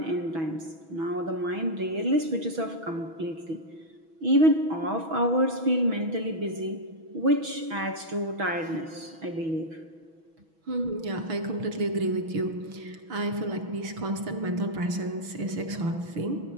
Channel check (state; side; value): late; left; 6.2 ms